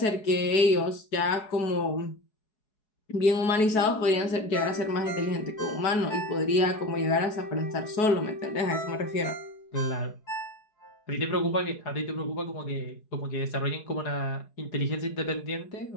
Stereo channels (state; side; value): late; right; 4.7 ms